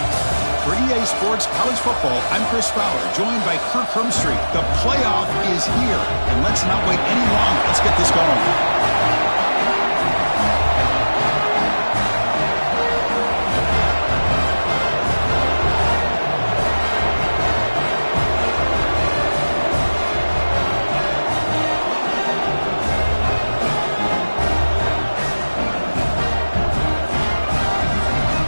For EA Sports College Football, I'm Chris Fowler, joined by Kirk Hermstreet. The playoff is here, and let's not wait any longer. Let's get this going.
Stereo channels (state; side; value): inverted; both; correlation -1.00